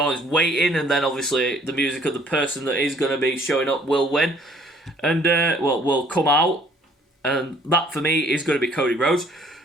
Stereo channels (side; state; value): both; normal; correlation 0.59